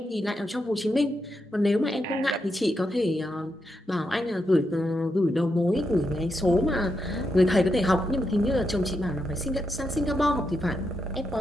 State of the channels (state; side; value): normal; both; correlation 0.84